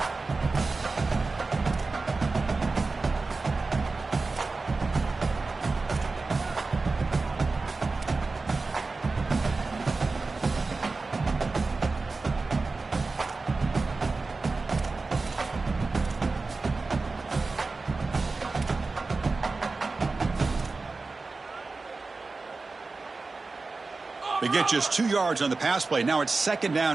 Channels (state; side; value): quieter; left; 3.8 dB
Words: They get just 2 yards on the pass play. Now it's 2nd